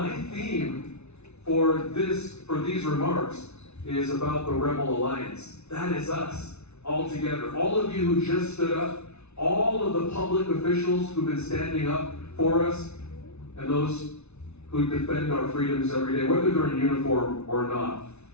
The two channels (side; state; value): right; late; 0.81 ms